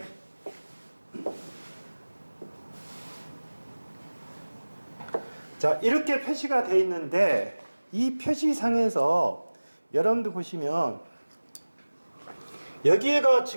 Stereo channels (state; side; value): inverted; both; correlation -1.00